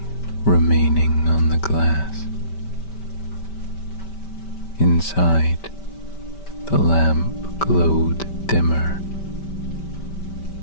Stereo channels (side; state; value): right; late; 5.1 ms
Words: remaining on the glass. Inside, the lamp glowed dimmer.